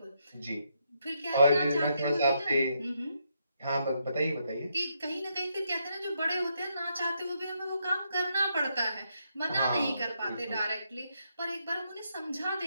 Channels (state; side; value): inverted; both; correlation -0.78